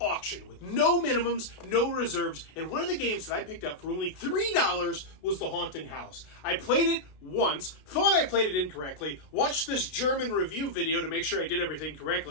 with no minimums, no reserves, and one of the games that I picked up for only $3 was The Haunting House. I played it once, thought I played it incorrectly, watched this German review video to make sure I did everything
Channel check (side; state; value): right; late; 32 ms